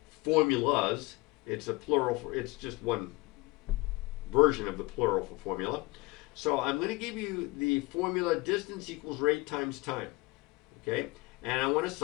formulas. It's a plural. It's just one version of the plural for formula. So I'm going to give you the formula distance equals rate times time. Okay, and I want to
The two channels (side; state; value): right; quieter; 23.7 dB